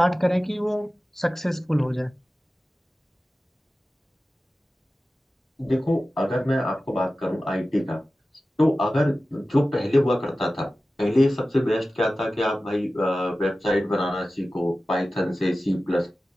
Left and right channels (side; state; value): both; normal; correlation 0.95